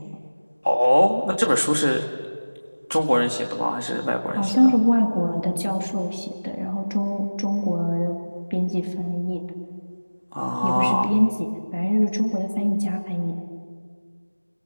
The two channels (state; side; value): inverted; both; correlation -1.00